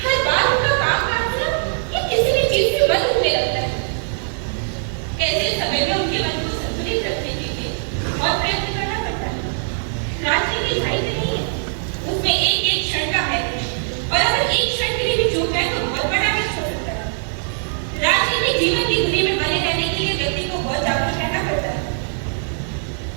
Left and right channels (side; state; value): left; silent; digital silence